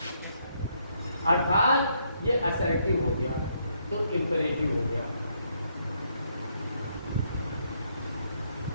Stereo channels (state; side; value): inverted; both; correlation -0.73